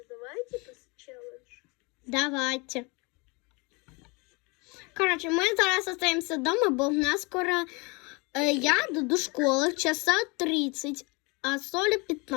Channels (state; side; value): quieter; right; 28.4 dB